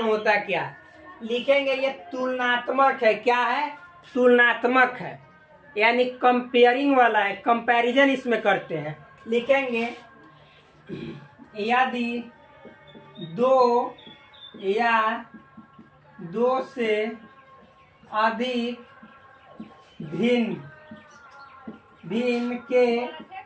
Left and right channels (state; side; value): identical; both; correlation 1.00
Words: होता क्या, लिखेंगे ये तुलनात्मक है। क्या है, तुलनात्मक है, यानी कंपेयरिंग वाला है, कंपैरिजन इसमें करते हैं। लिखेंगे यदि दो या दो से अधिक भिन्न भिन्न के